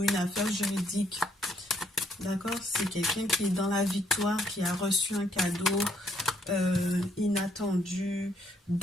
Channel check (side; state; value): both; normal; correlation 0.69